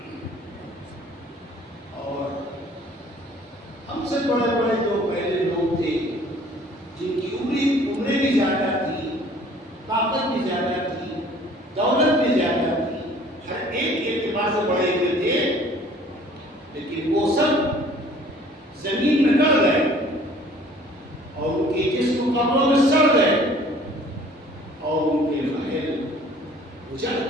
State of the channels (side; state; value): both; normal; correlation 0.53